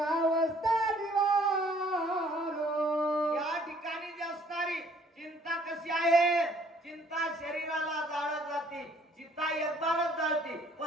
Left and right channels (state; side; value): normal; both; correlation 0.60